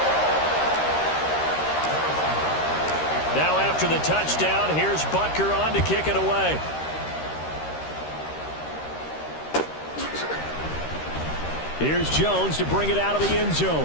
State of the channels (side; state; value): right; late; 13 ms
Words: Now after the touchdown, here's Butker on to kick it away. Here's Jones to bring it out of the end